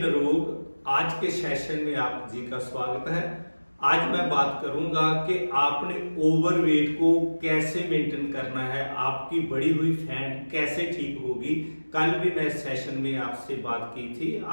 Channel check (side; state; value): both; inverted; correlation -1.00